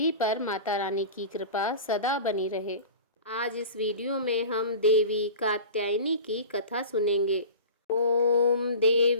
पर माता रानी की कृपा सदा बनी रहे। आज इस वीडियो में हम देवी कात्यायनी की कथा सुनेंगे। ओम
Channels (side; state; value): both; inverted; correlation -0.36